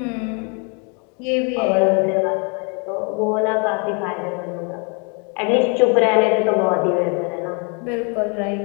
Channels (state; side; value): quieter; right; 35.7 dB